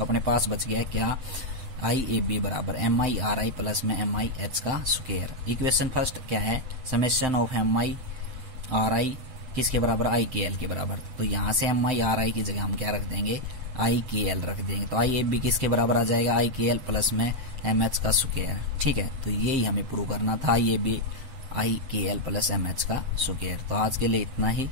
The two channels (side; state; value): left; late; 8.1 ms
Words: अपने पास बच गया क्या, IAB बराबर MI RI प्लस में MI H का स्क्वायर। इक्वेशन फर्स्ट क्या है, समेशन ऑफ MI RI किसके बराबर, I KL के बराबर। तो यहाँ से MI RI की जगह हम क्या रख देंगे, I KL रख देंगे। तो IAB किसके बराबर आ जाएगा, I KL प्लस में MH का स्क्वायर। ठीक है, तो यही हमें प्रूव करना था, IAB I KL plus MH का स्क्वायर। तो आज के लिए इतना ही,